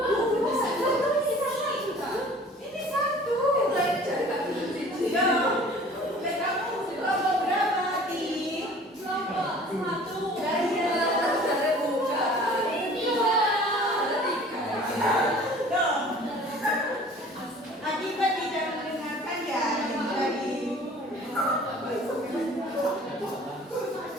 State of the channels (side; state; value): both; normal; correlation 0.48